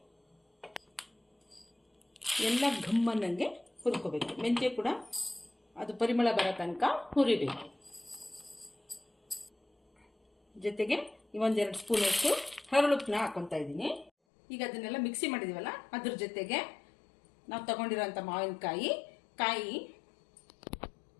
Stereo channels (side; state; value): right; drops out; at 14.1 s